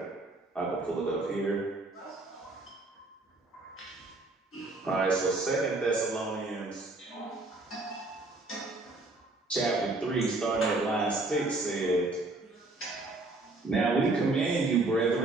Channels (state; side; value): quieter; left; 3.1 dB